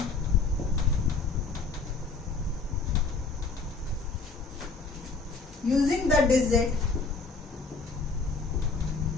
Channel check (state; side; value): quieter; right; 4.3 dB